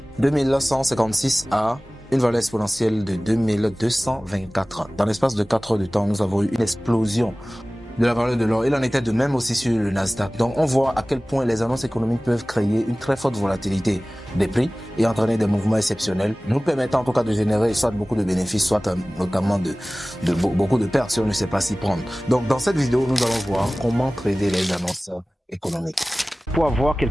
2156 à une valeur exponentielle de 2224. Dans l'espace de 4 heures de temps, nous avons eu une explosion de la valeur de l'or. Il en était de même aussi sur le Nasdaq. Donc on voit à quel point les annonces économiques peuvent créer une très forte volatilité des prix et entraîner des mouvements exceptionnels, nous permettant en tout cas de générer soit beaucoup de bénéfices, soit notamment beaucoup de pertes si on ne sait pas s'y prendre. Donc dans cette vidéo, nous allons voir comment trader les annonces économiques. Pour avoir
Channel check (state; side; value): normal; both; correlation 0.98